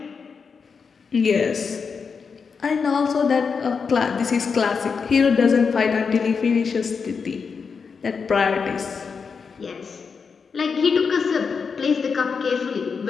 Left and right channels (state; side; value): quieter; right; 5.6 dB